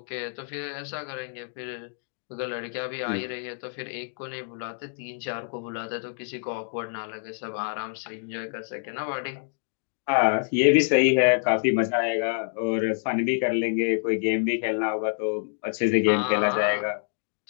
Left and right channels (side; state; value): right; silent; digital silence